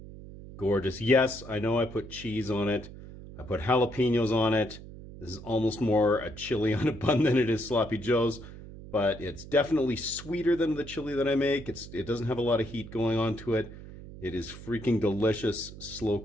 Gorgeous. Yes, I know I put cheese on it. I put jalapenos on it. This is almost more a chili on a bun than it is Sloppy Joe's. But it's definitely sweeter than the chili that I make. It doesn't have a lot of heat going on to it. It is freaking delicious, slow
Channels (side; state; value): right; noise; hum, 15 dB below the sound